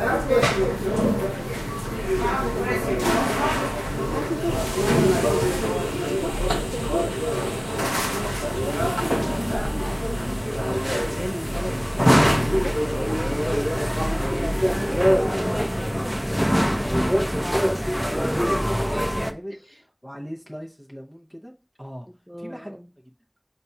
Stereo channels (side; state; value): both; identical; correlation 1.00